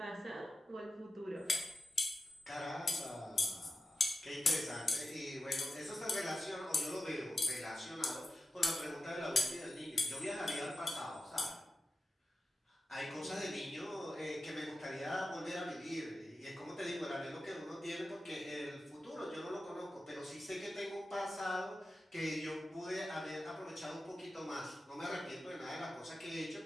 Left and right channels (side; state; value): both; normal; correlation 0.92